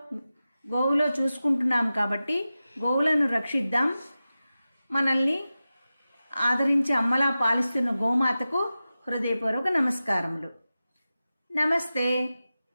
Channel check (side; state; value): both; inverted; correlation -0.94